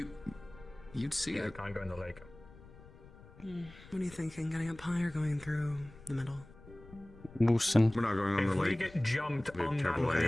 You'd see Yeah, it. can't go in the lake. What are you thinking? Getting up high or going through the middle? Moosin. We're not going on If the we lake. get jumped Be a on that terrible idea.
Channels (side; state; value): left; noise; rumble, 21 dB below the sound